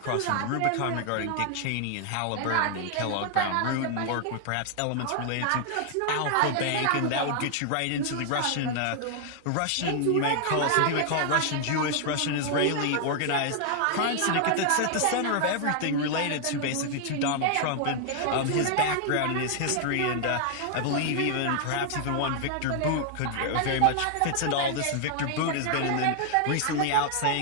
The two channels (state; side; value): different; both; correlation 0.00